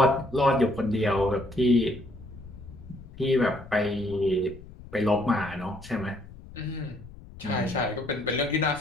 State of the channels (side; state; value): left; noise; rumble, 17 dB below the sound